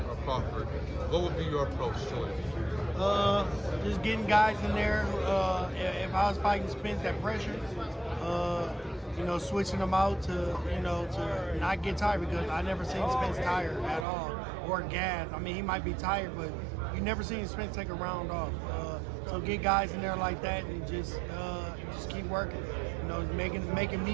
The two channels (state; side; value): drops out; left; at 14.1 s